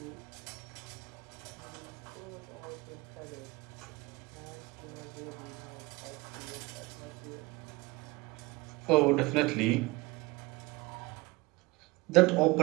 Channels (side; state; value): left; quieter; 23.4 dB